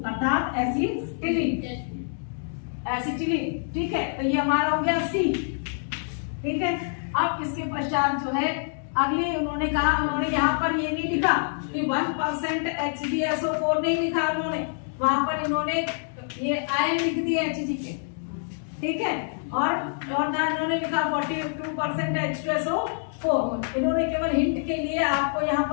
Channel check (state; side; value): silent; right; digital silence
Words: अर्थात एसिटिलीन, ठीक है। तो ये हमारा हो गया C, ठीक है। अब इसके पश्चात जो है अगले उन्होंने कहा, उन्होंने यहाँ पर ये नहीं लिखा कि 1% HgSO4 नहीं लिखा उन्होंने, वहां पर इन्होंने ये आयन लिख दिए Hg के, ठीक है। इन्होंने लिखा 42% H2SO4। इन्होंने केवल हिंट के लिए आपको यहाँ